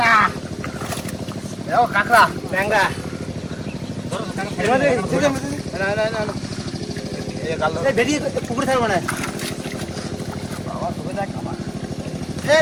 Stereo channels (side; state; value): both; identical; correlation 1.00